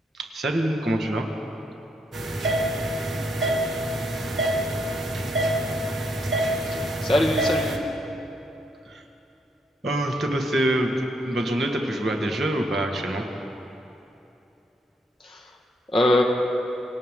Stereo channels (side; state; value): both; normal; correlation 0.76